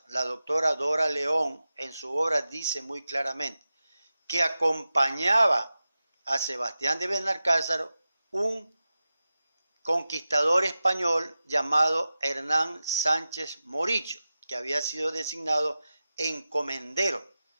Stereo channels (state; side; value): inverted; both; correlation -0.93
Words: La doctora Dora León en su obra dice muy claramente que acompañaba a Sebastián de Benalcázar un conquistador español llamado Hernán Sánchez Morillo, que había sido designado encomendero.